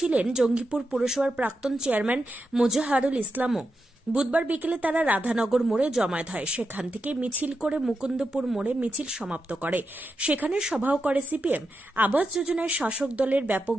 জঙ্গিপুর পুরসভার প্রাক্তন চেয়ারম্যান মোজাহারুল ইসলামও। বুধবার বিকেলে তারা রাধানগর মোড়ে জমায়েত হয়। সেখান থেকে মিছিল করে মুকুন্দপুর মোড়ে মিছিল সমাপ্ত করে। সেখানে সভাও করে সিপিএম। আবাস যোজনায় শাসক দলের ব্যাপক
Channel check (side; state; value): both; normal; correlation 0.87